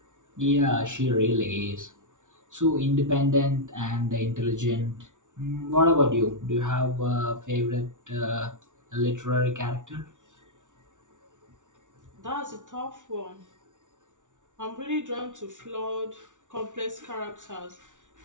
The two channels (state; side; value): late; left; 0.87 ms